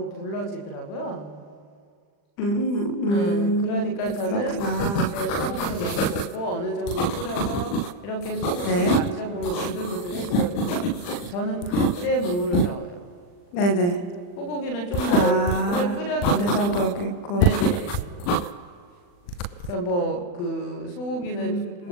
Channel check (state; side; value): late; right; 40 ms